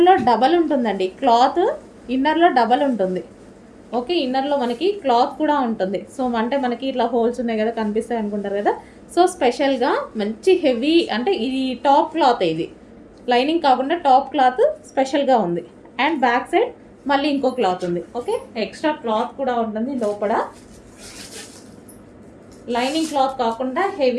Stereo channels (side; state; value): both; identical; correlation 1.00